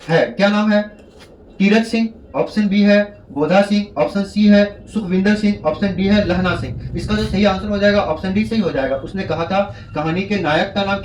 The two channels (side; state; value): both; identical; correlation 1.00